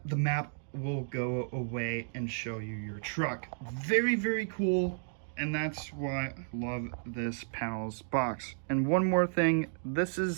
the map will go away and show you your truck. Very, very cool, and that's why I love this panels box. And one more thing, this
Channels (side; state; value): left; silent; digital silence